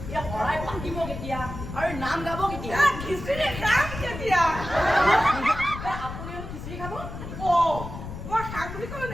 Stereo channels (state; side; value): noise; left; rumble, 9 dB below the sound